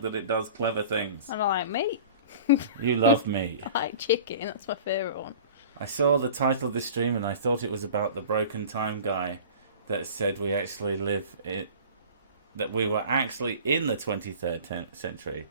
that it does clever things. And I like meat. You love meat. I like chicken. That's my favourite one. I saw the title of this stream, and I thought it was about the broken time guy that said we actually that we were actually in the 23rd century.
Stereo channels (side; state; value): both; inverted; correlation -0.41